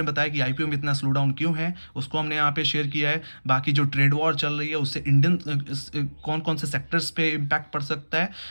में बताया कि आईपीओ में इतना स्लो डाउन क्यों है, उसको हमने यहाँ पे शेयर किया है। बाकी जो ट्रेड वॉर चल रही है उससे इंडियन कौन कौन से सेक्टर्स पे इम्पैक्ट पड़ सकता है,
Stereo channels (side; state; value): both; inverted; correlation -1.00